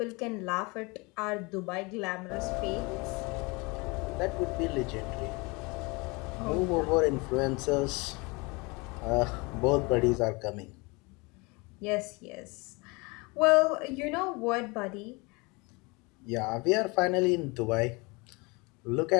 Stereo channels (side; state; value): right; quieter; 27.1 dB